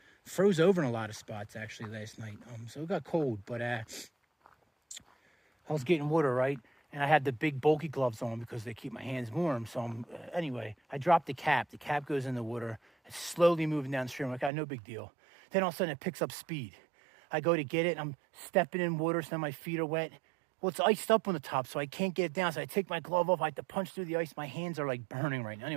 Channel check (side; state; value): left; drops out; at 14.5 s